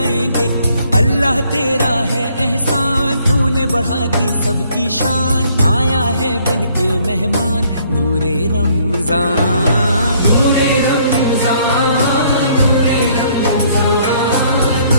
अल्लाह तेरा है एहसान, तूने बढ़ा दी सबकी शान, आया है बन के मेहमान, नूरे रमजान नूरे रमजान नूरे रमजान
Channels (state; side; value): inverted; both; correlation -0.64